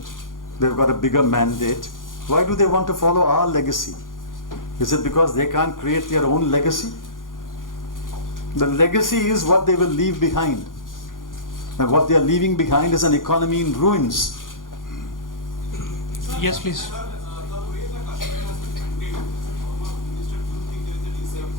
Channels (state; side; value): late; right; 0.90 ms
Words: They've got a bigger mandate. Why do they want to follow our legacy? Is it because they can't create their own legacy? The legacy is what they will leave behind. And what they are leaving behind is an economy in ruins. Yes, please. The way the Kashmir has been handled, as a former minister, do you think there is a